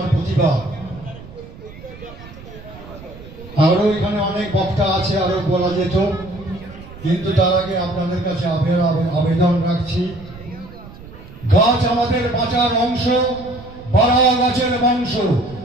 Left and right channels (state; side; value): noise; right; rumble, 17 dB below the sound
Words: প্রতিবাদ। আরো এখানে অনেক বক্তা আছে, আরো বলা যেত, কিন্তু তার আগে আপনাদের কাছে আবেদন রাখছি, গাছ আমাদের বাঁচার অংশ, বাড়া গাছের বংশ।